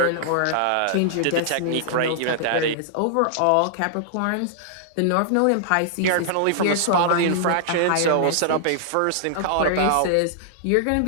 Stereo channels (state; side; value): different; both; correlation -0.01